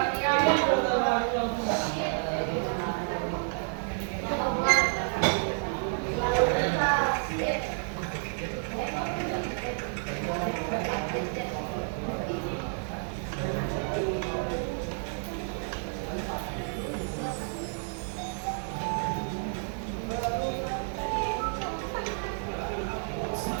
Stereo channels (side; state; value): left; silent; 58 dB below the other